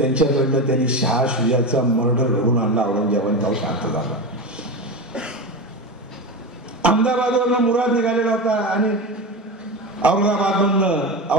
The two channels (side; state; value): both; normal; correlation 0.21